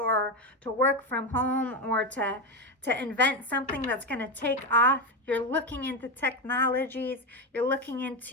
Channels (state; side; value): normal; both; correlation 0.13